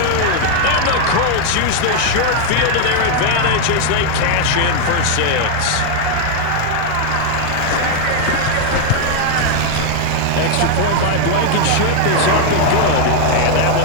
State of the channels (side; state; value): both; different; correlation 0.00